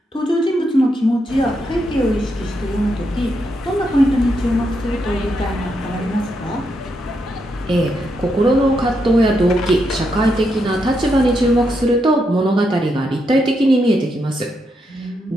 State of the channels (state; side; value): normal; both; correlation 0.81